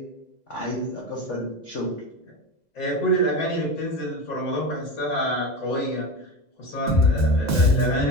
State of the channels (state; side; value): late; right; 2.0 ms